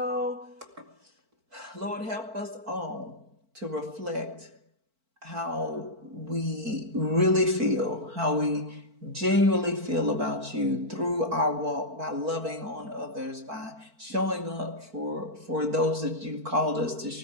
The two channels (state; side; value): late; left; 4.5 ms